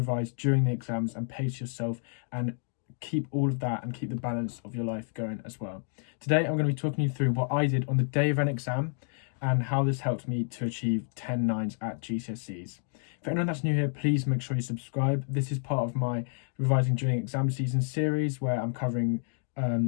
during the exams and pace yourself and keep all of that and keep the balance of your life going as well. Today I'm going to be talking you through what I did on the day of an exam and how this helped me to achieve 10 nines at GCSEs. For anyone that's new here, please make sure you subscribe. This is part of my Revising During Exam Season series where I'm covering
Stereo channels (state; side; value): silent; right; 58 dB below the other